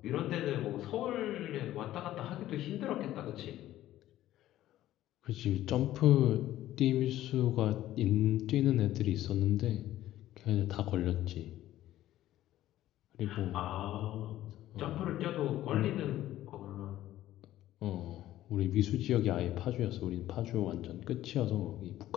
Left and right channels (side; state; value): right; quieter; 13.9 dB